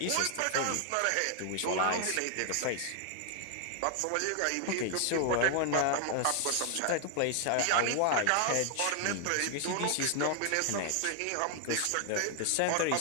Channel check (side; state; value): both; different; correlation 0.00